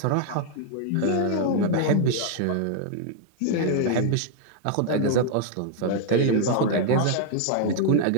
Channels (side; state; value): both; different; correlation 0.00